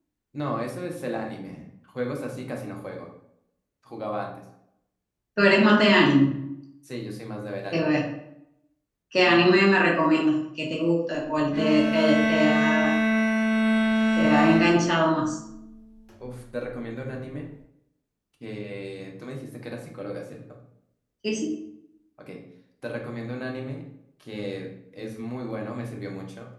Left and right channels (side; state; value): both; identical; correlation 1.00